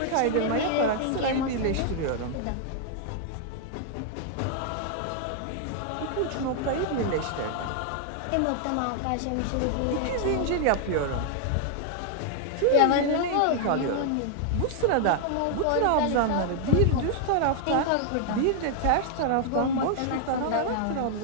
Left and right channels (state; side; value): different; both; correlation 0.00